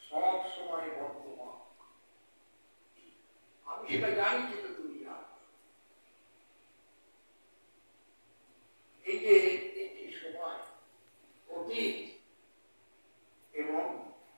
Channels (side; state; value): both; inverted; correlation -1.00